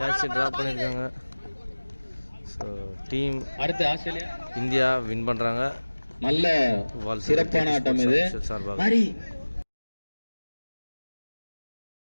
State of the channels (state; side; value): inverted; both; correlation -1.00